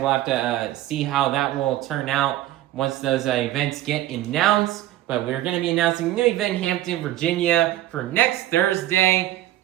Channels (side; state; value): left; quieter; 14.1 dB